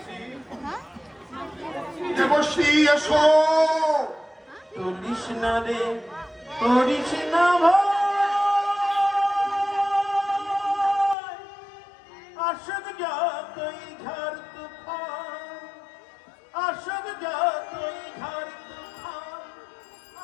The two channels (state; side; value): drops out; right; at 11.2 s